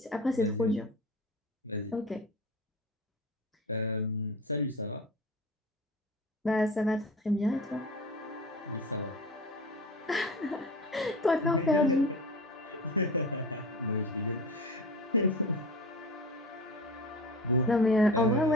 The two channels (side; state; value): both; normal; correlation 0.33